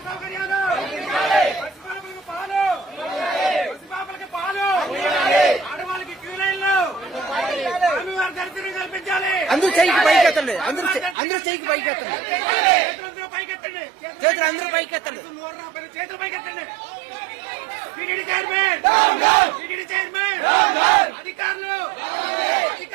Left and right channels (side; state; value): left; drops out; at 11.2 s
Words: సౌకర్యాలు, పసిపాపలకి పాలు, ఆడవాళ్ళకి క్యూ లైన్లు, స్వామివారి దర్శనం కల్పించాలి. అందరూ చేయికి పైకెత్తండి, అందరూ చేయికి పైకెత్తండి, చేతులందరూ పైకెత్తండి, చేతులు అందరూ పైకెత్తండి. చేతులు పైకెత్తండి. టీటీడీ చైర్మన్, అధికారులు